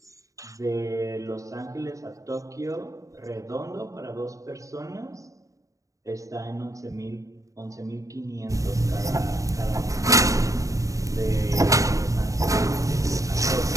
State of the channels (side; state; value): left; late; 0.16 ms